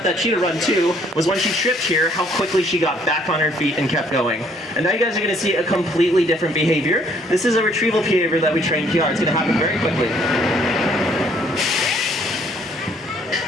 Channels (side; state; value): both; normal; correlation 0.63